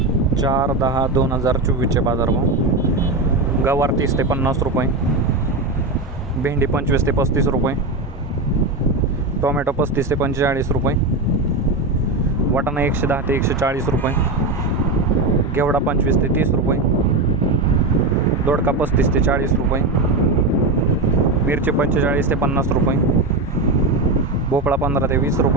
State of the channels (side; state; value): left; quieter; 3.1 dB